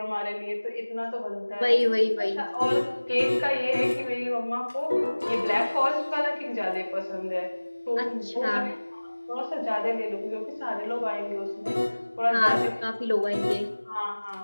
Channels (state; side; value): inverted; both; correlation -1.00